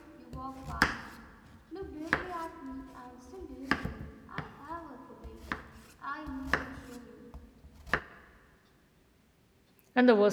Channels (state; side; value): identical; both; correlation 1.00